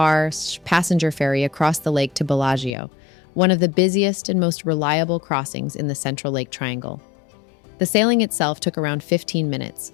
ferry across the lake to Bellagio, one of the busiest and most reliable crossings in the Central Lake Triangle. The sailing itself took around 15 minutes,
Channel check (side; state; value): right; drops out; at 2.8 s